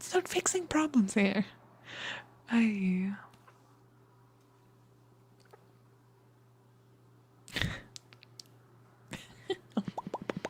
not fixing problems here.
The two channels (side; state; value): both; identical; correlation 1.00